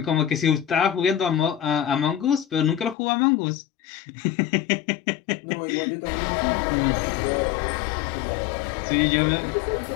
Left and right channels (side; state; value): right; drops out; at 3.0 s